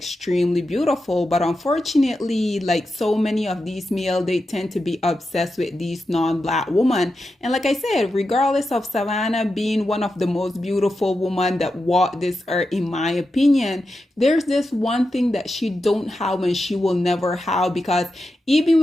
beautiful, but unfortunately, like so many of these males, they tend to be obsessed with these non-black women. And like I said, regardless of Savannah being one of the most beautiful women that walked this earth, in my opinion, there's this one thing that she don't have and she will never have, because even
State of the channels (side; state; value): both; normal; correlation 0.89